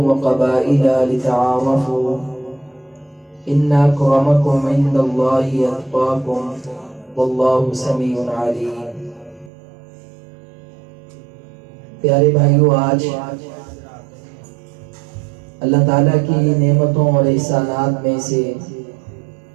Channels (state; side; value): drops out; left; at 9.5 s